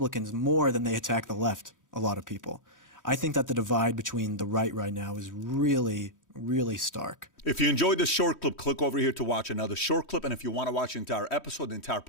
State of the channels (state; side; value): late; right; 3.1 ms